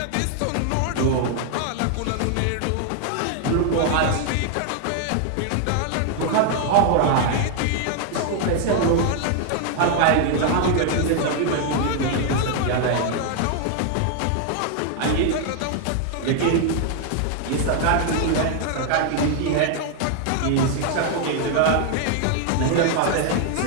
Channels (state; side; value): different; both; correlation 0.00